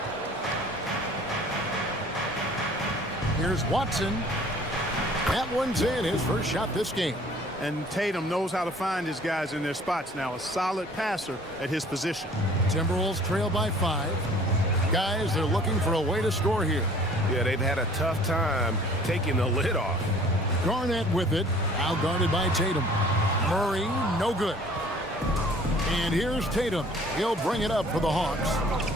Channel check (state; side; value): normal; both; correlation 0.52